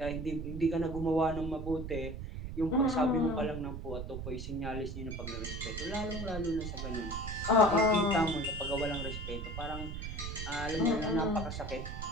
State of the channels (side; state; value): right; noise; rumble, 6 dB below the sound